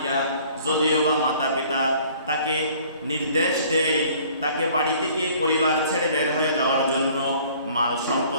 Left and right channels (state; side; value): inverted; both; correlation -0.54